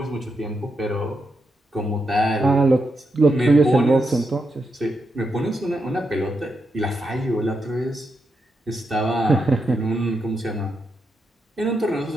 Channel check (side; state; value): both; normal; correlation 0.84